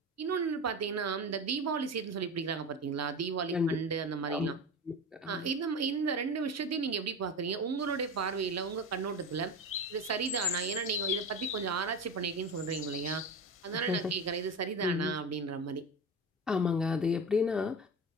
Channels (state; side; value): normal; both; correlation 0.26